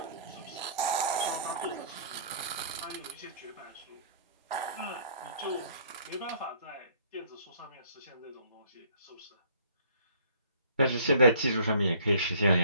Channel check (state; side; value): inverted; both; correlation -0.57